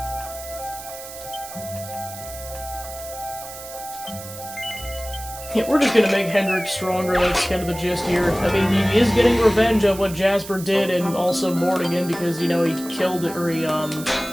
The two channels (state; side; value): noise; right; hiss, 13 dB below the sound